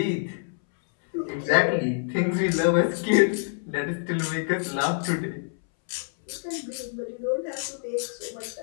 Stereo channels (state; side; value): silent; right; 61 dB below the other